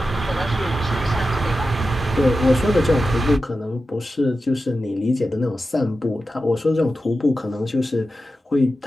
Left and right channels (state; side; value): normal; both; correlation 0.92